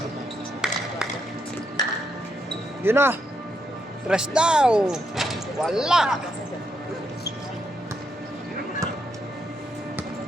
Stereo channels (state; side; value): normal; both; correlation 0.80